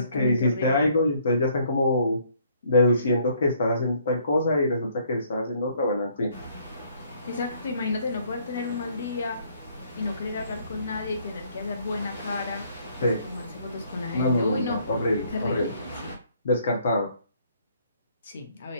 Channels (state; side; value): inverted; both; correlation -0.65